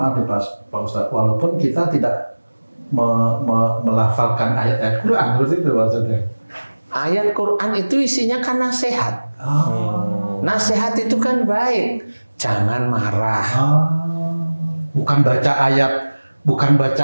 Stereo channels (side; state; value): both; inverted; correlation -1.00